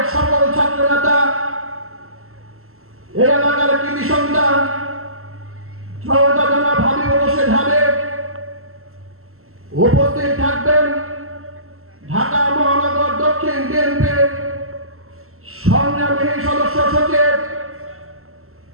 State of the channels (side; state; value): left; late; 0.62 ms